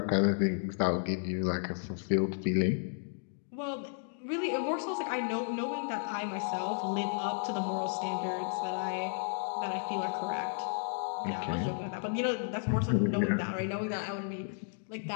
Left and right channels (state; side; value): silent; right; digital silence